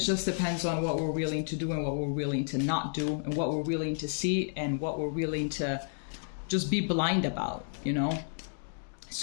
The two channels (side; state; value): right; silent; digital silence